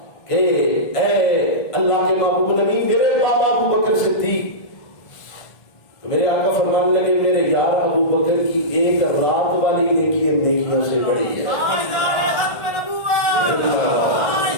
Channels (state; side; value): late; right; 1.5 ms